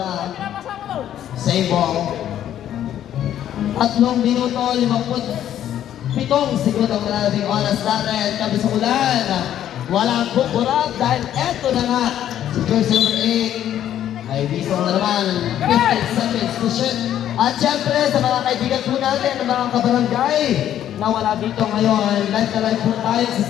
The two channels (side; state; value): right; quieter; 11.1 dB